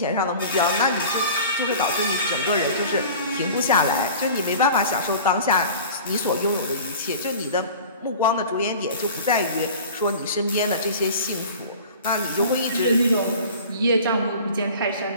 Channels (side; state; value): both; inverted; correlation -0.41